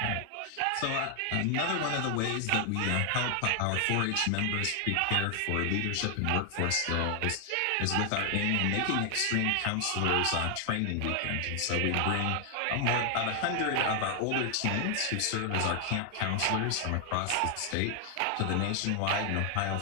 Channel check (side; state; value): both; different; correlation 0.00